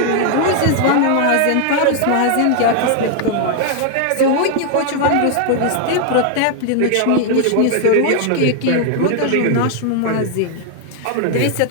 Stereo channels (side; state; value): both; different; correlation 0.00